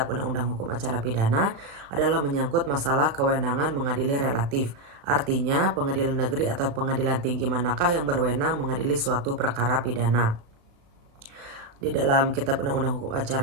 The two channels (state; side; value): late; left; 36 ms